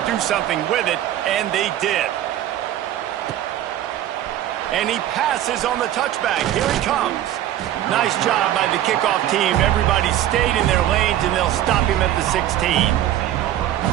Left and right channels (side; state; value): left; quieter; 12.4 dB